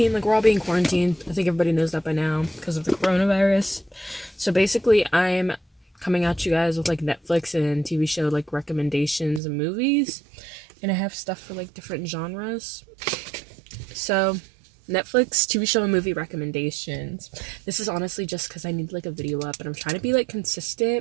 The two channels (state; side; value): drops out; left; at 9.4 s